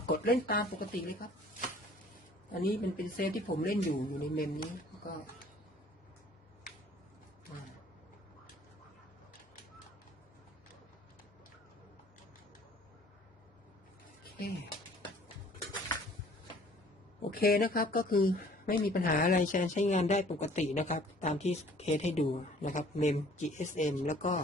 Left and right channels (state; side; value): normal; both; correlation 0.54